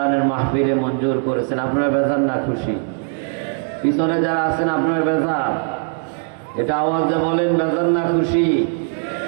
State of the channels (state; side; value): silent; left; 58 dB below the other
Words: মাহফিলে মঞ্জুর করেছেন। আপনারা বেজার না খুশি? পিছনে যারা আছেন আপনার বেজার? এটা আওয়াজে বলেন বেজার না খুশি?